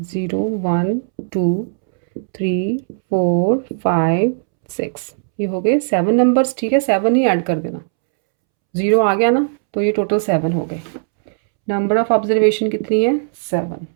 0 1 2 3 4 5 6, ये हो गए 7 नंबर्स, ठीक है। 7 ही ऐड कर देना, 0 आ गया ना, तो ये टोटल 7 हो गए। नंबर ऑफ ऑब्जर्वेशन कितनी है? 7।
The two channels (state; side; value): silent; left; 68 dB below the other